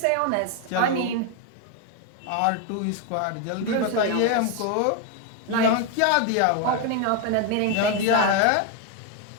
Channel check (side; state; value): both; different; correlation 0.01